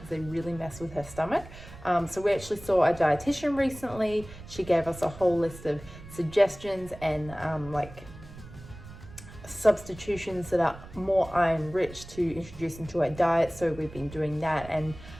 they really mess with her stomach. So we actually saw a dietitian recently. She gave us a whole list of suggestions and like substitutions that are more iron rich to introduce into our diet. So we've been doing that, and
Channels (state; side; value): noise; right; rumble, 16 dB below the sound